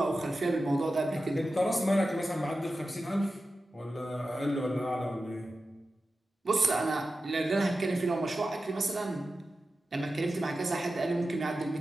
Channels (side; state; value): both; normal; correlation 0.93